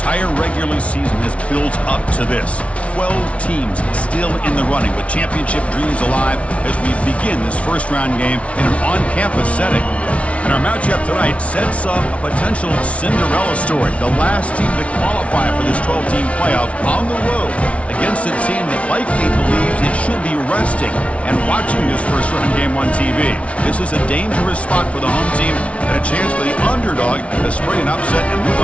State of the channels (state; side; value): late; right; 0.063 ms